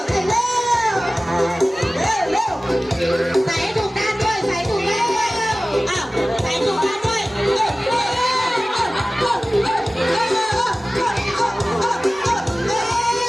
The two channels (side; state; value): both; normal; correlation 0.97